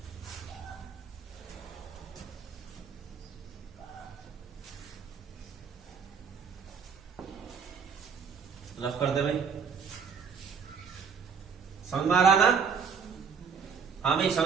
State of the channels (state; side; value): quieter; left; 6.3 dB